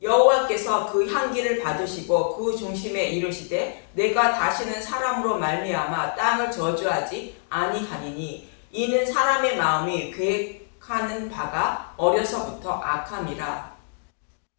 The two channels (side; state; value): right; silent; digital silence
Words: 여호와께서 그 향기를 받으시고 그 중심에 이르시되 내가 다시는 사람으로 말미암아 땅을 저주하지 아니하리니 이는 사람의 마음이 계획하는 바가 어려서부터 악함이라.